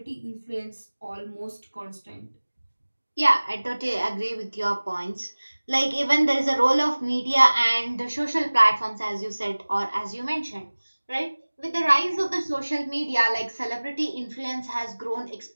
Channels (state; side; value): inverted; both; correlation -1.00